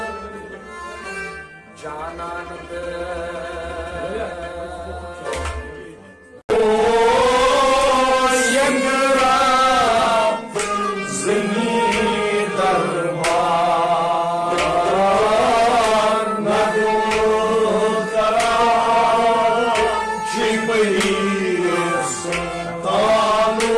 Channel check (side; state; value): both; identical; correlation 1.00